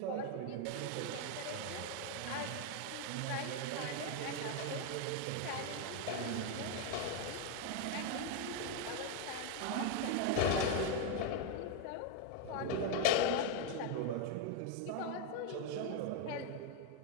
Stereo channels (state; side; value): different; both; correlation 0.01